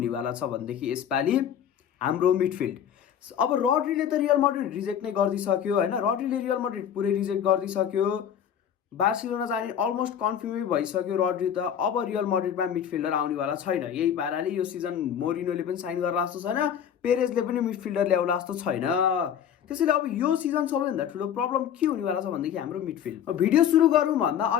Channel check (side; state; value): right; quieter; 9.0 dB